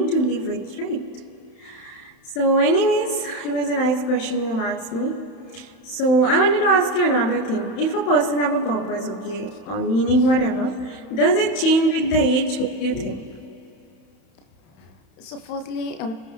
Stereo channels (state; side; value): late; right; 31 ms